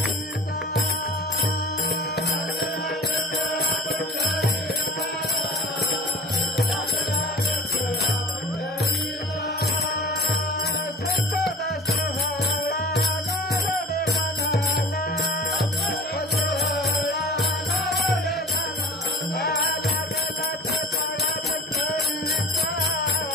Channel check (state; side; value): normal; both; correlation 0.42